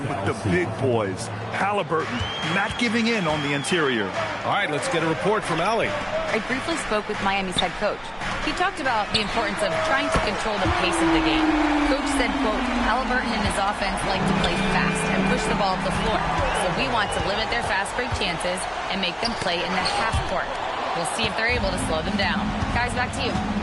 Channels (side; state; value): both; identical; correlation 1.00